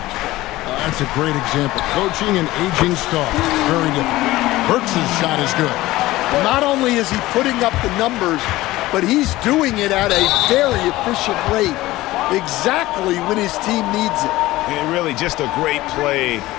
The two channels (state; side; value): quieter; right; 17.6 dB